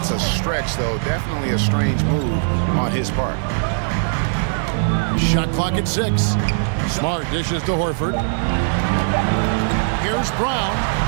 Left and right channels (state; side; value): silent; left; digital silence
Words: a stretch, though. Definitely a strange move on his part. Shot clock at 6. Smart dishes to Horford. Here's Brown.